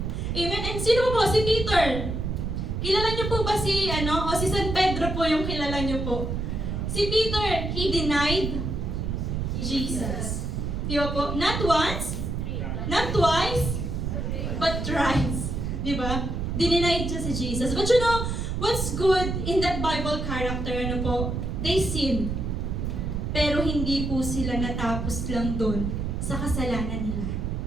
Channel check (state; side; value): noise; right; rumble, 2 dB below the sound